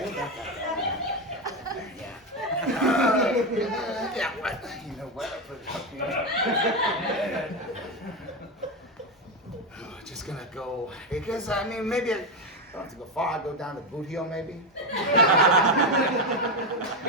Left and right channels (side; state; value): both; normal; correlation 0.11